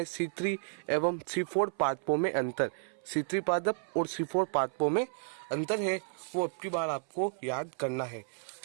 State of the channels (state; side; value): silent; left; 55 dB below the other